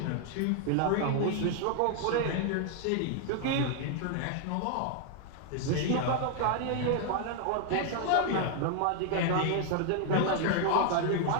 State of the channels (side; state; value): both; different; correlation 0.00